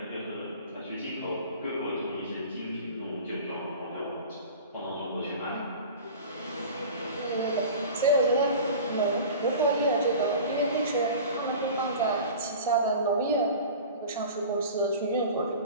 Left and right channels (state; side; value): inverted; both; correlation -0.38